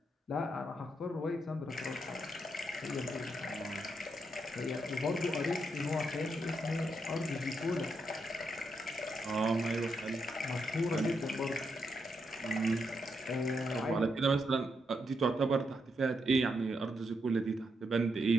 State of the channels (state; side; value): normal; both; correlation 0.81